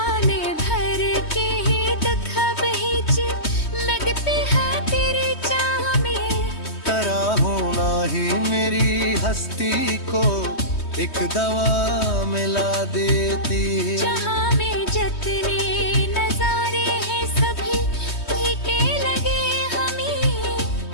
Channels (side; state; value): right; late; 3.2 ms